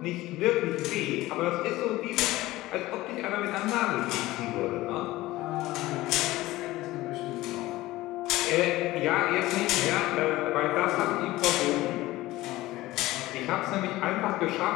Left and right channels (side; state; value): right; quieter; 17.8 dB